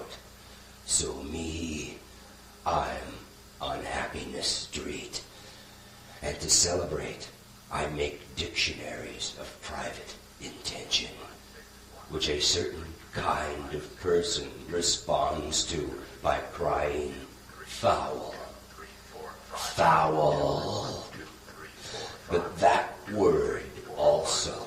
So me, I'm on Happiness Street, and to celebrate, I make dictionaries of private intention, which a certain kind of person responds to by crying, foul, foul. But that word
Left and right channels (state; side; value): identical; both; correlation 1.00